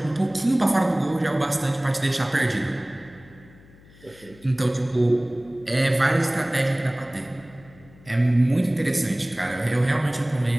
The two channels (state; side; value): noise; left; hum, 25 dB below the sound